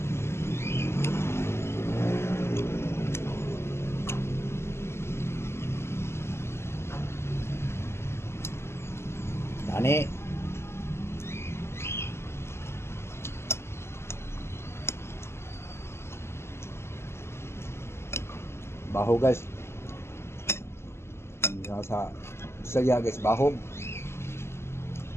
Tani. Baho guys. Sa saya guys, baho.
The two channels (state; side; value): late; right; 0.12 ms